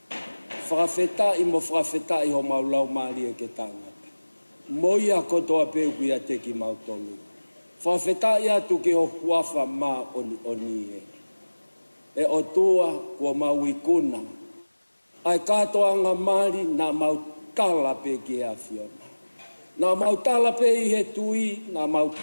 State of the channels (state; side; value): inverted; both; correlation -1.00